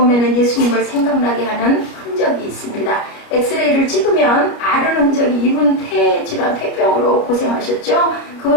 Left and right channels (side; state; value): right; late; 29 ms